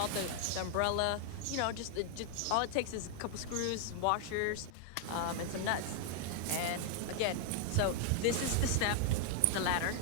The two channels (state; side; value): different; both; correlation 0.00